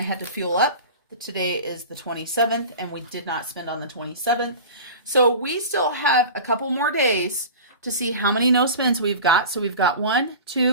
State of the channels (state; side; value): inverted; both; correlation -0.34